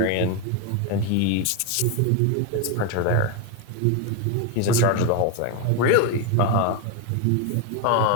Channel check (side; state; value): both; different; correlation 0.01